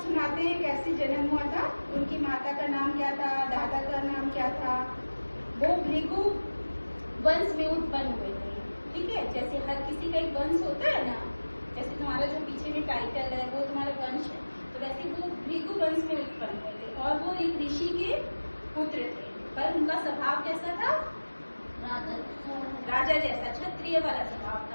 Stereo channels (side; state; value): both; inverted; correlation -1.00